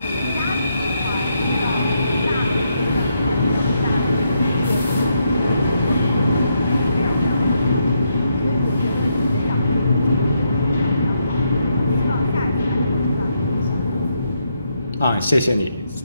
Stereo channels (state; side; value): inverted; both; correlation -0.78